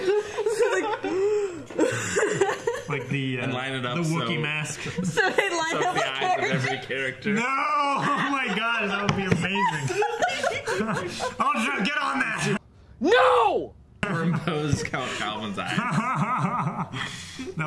Like the and line it up the Wookiee so, mask. So they line so up the eyes of every character. No! Oh my god, that would be amazing. Oh, get on that! No! Superimpose Count Calvin's eyes.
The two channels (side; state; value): both; identical; correlation 1.00